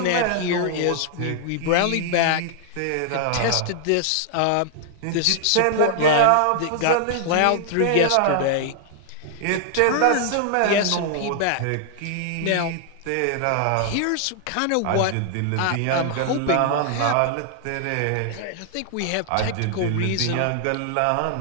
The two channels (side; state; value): both; different; correlation -0.01